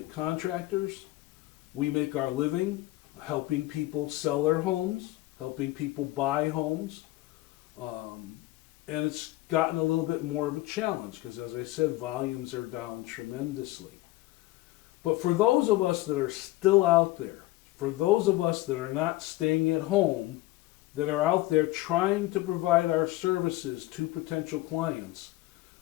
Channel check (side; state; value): right; quieter; 18.4 dB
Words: contractors. We make our living helping people sell their homes, helping people buy homes. And it's gotten a little bit more of a challenge because, as I said, volumes are down tremendously. But for those of us that are still out there, for those of us that are not staying at home, that are out there trying to provide our services to potential clients,